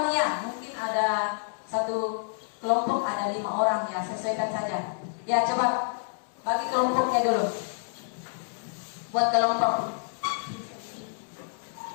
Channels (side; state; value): right; silent; digital silence